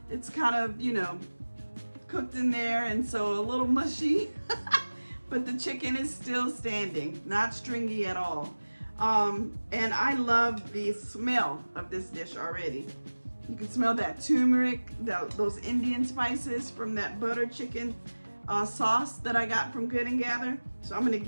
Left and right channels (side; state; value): both; inverted; correlation -1.00